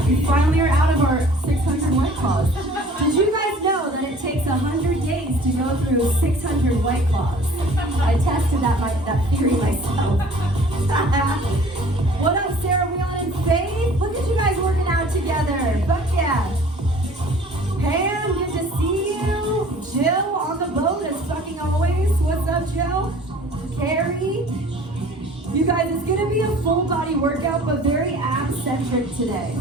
We finally are out of our 600 White Claws. Did you guys know that it takes 100 days to go through 600 White Claws? I tested that theory myself. What up, Sarah, Wheelan, and Faith? Look at you guys working out together. Fuck yeah. Pam, good to see you. Jill on the boat as fucking always. What's up, Jill? Carrie. You guys, it's gonna be a full body workout, but very ab-centric today.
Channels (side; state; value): both; normal; correlation 0.49